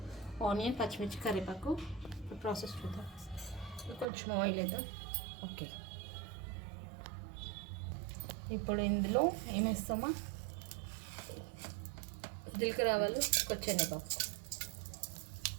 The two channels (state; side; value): drops out; left; at 4.0 s